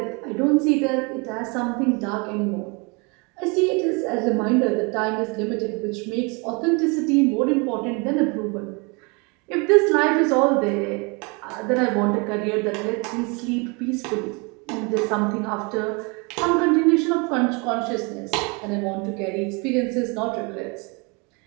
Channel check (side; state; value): left; quieter; 30.4 dB